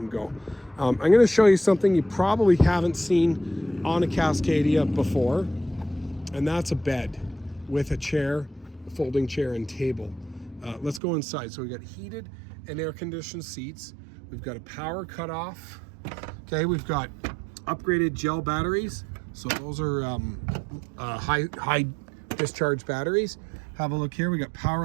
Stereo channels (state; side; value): drops out; left; at 11.0 s